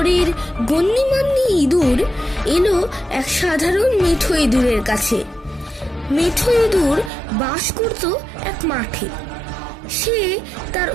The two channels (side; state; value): left; drops out; at 7.1 s